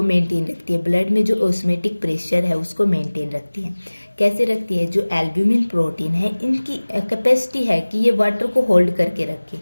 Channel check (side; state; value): both; inverted; correlation -1.00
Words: मेंटेन रखती है। ब्लड में जो ऑस्मोटिक प्रेशर है उसको मेंटेन रखती है। कैसे रखती है, जो एल्ब्यूमिन प्रोटीन है इनकी कैपेसिटी है कि ये वाटर को होल्ड करके रखे।